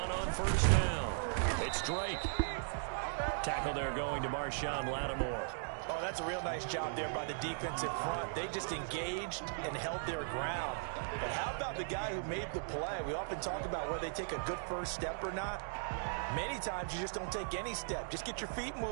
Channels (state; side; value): silent; left; digital silence